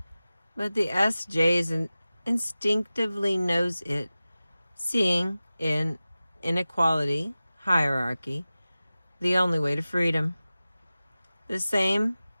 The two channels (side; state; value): both; inverted; correlation -0.96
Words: But the SJ instinctively knows it, seeing in inequality, hierarchy, the only way to freedom. The same